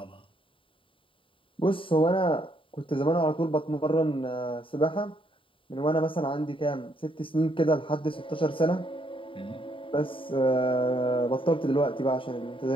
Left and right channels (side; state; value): right; late; 0.25 ms